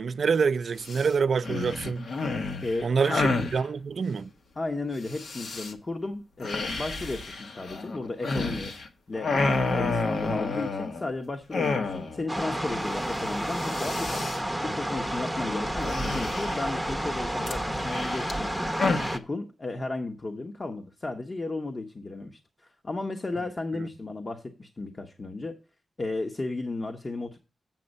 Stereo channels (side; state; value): both; normal; correlation 0.87